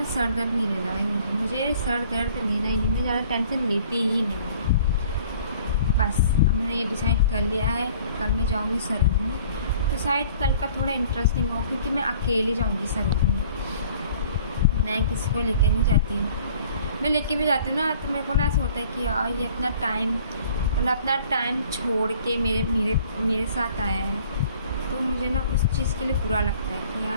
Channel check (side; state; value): both; inverted; correlation -0.53